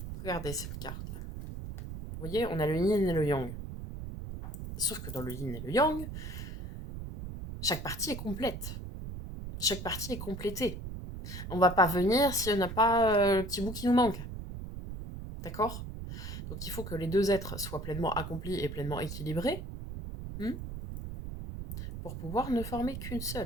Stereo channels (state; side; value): noise; right; rumble, 8 dB below the sound